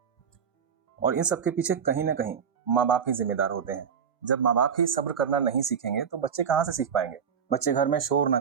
और इन सब के पीछे कहीं ना कहीं माँ बाप ही जिम्मेदार होते हैं। जब माँ बाप ही सब्र करना नहीं सीखेंगे तो बच्चे कहाँ से सीख पाएंगे। बच्चे घर में शोर ना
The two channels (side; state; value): left; quieter; 7.2 dB